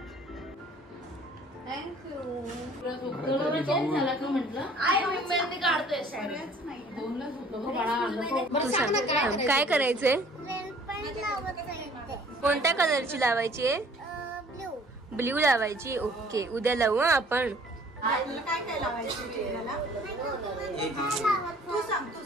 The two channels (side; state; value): both; normal; correlation 0.54